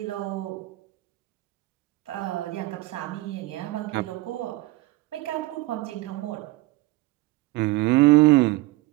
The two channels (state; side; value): quieter; left; 19.5 dB